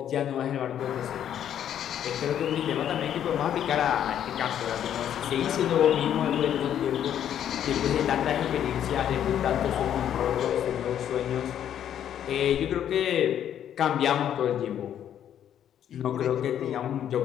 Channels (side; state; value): right; quieter; 10.0 dB